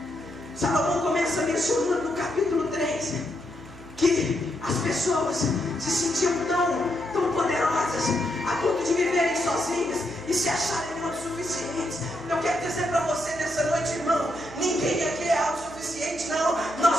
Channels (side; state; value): right; noise; hum, 20 dB below the sound